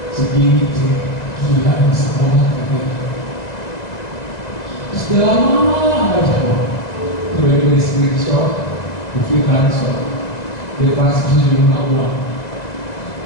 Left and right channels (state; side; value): late; right; 2.0 ms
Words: Segini tuh, gila di sekolah katanya. Terus dia lama nggak jawab. Tiba-tiba di screenshot, bukti transfer, dia transfer sejumlah uang.